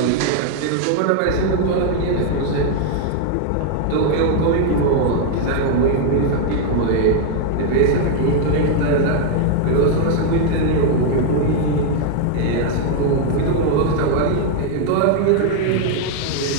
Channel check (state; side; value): different; both; correlation 0.00